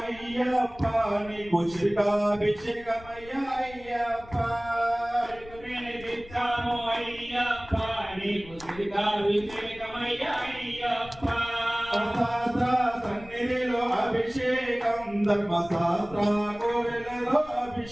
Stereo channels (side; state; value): left; noise; rumble, 19 dB below the sound